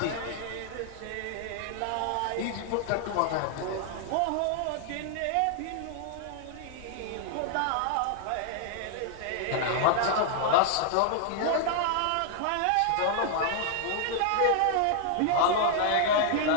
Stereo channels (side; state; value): both; different; correlation 0.00